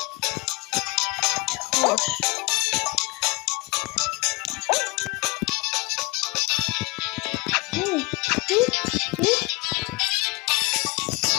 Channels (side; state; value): right; quieter; 25.7 dB